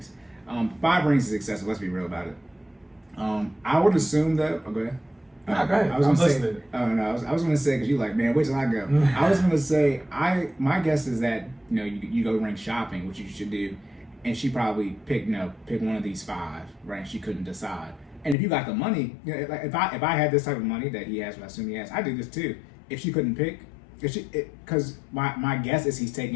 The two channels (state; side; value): drops out; right; at 18.4 s